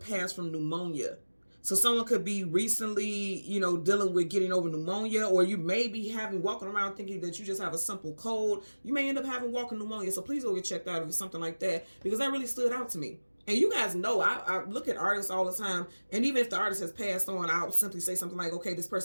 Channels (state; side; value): inverted; both; correlation -1.00